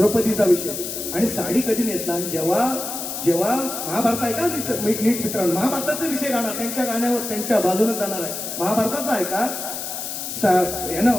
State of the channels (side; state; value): left; noise; hiss, 6 dB below the sound